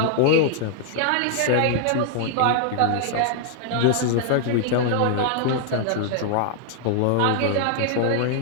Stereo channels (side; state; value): both; different; correlation 0.00